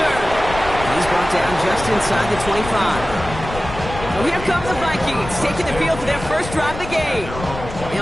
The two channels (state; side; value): noise; left; rumble, 10 dB below the sound